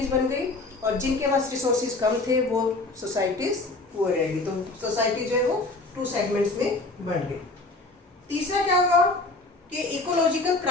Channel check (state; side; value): quieter; right; 3.2 dB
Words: बन गई, और जिनके पास रिसोर्सेज कम थे वो सोसाइटीज़ पुअर रह गई। तो सोसाइटी जो है वो टू सेगमेंट्स में बन गई। तीसरा क्या हुआ कि इकोलॉजिकल